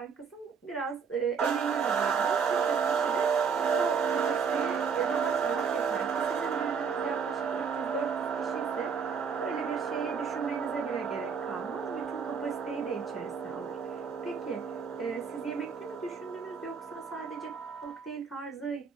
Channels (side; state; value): left; quieter; 6.1 dB